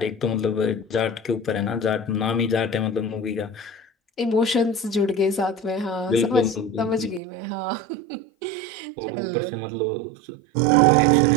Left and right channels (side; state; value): left; drops out; at 7.2 s